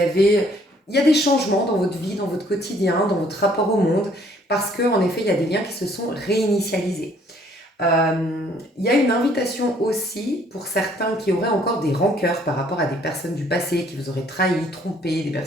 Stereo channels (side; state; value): both; normal; correlation 0.62